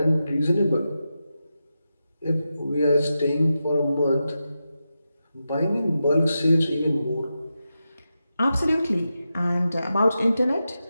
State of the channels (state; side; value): inverted; both; correlation -0.89